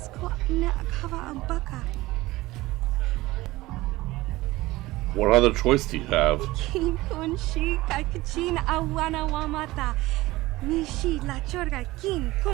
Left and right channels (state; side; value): quieter; left; 18.8 dB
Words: na akava ambaka. What other choice do you have? Kin kun shi kakachin awana wamata. Nishi la chorga kin